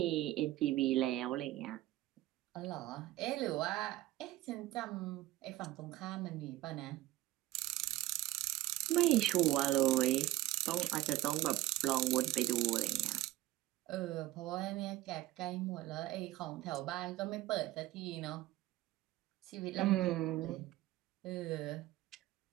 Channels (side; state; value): left; quieter; 16.4 dB